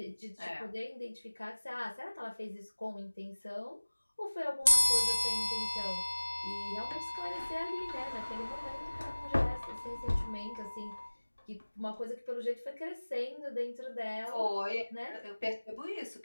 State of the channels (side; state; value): both; inverted; correlation -1.00